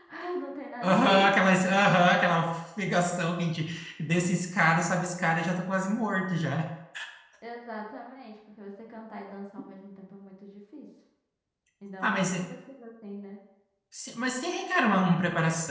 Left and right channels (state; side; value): identical; both; correlation 1.00